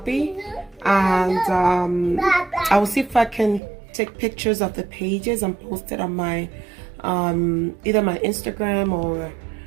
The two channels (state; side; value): drops out; left; at 3.6 s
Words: and I will see if I can take pictures of the pages and post it on my either my Instagram or